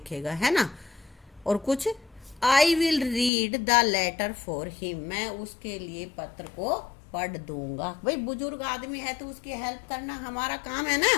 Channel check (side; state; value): right; drops out; at 3.3 s